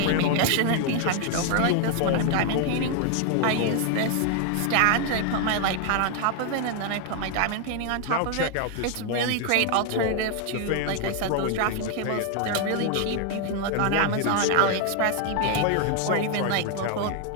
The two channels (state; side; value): different; both; correlation 0.00